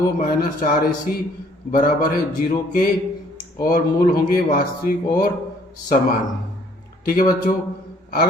माइनस 4ac बराबर है 0 के और मूल होंगे वास्तविक और समान। ठीक है बच्चों।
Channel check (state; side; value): normal; both; correlation 0.61